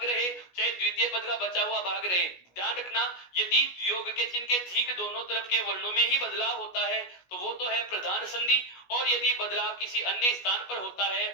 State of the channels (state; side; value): late; right; 16 ms